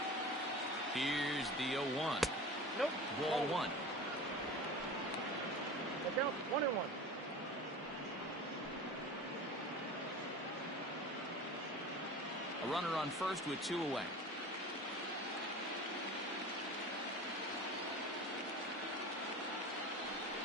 Here's the 0-1. Nope. Ball 1. Look out. 1-1. A runner on first with 2 away.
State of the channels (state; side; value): normal; both; correlation 0.35